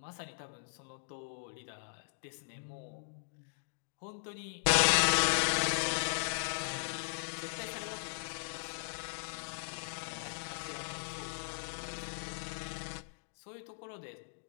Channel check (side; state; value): right; silent; digital silence